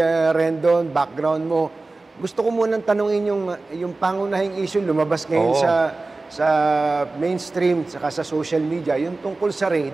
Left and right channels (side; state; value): left; quieter; 3.4 dB